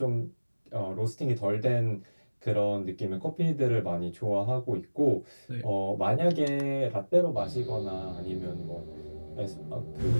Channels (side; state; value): both; inverted; correlation -1.00